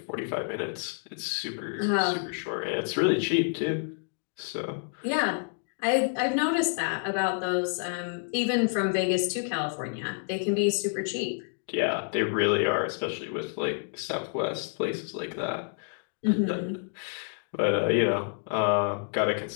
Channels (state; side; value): silent; right; 59 dB below the other